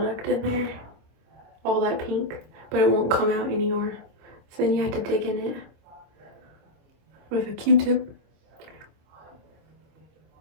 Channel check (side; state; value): left; late; 26 ms